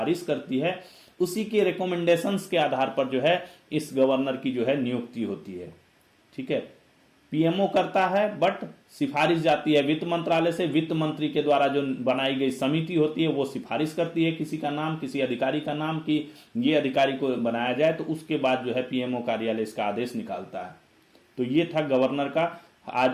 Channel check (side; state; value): both; identical; correlation 1.00